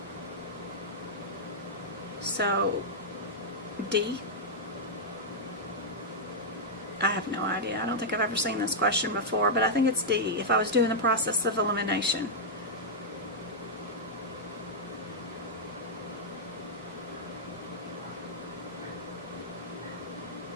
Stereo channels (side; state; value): both; normal; correlation -0.07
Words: So, D? I have no idea. I don't think I've ever seen this question before, but I think it's D, if I was doing the process of elimination.